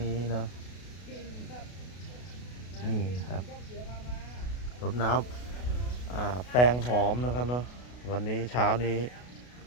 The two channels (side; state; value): right; late; 32 ms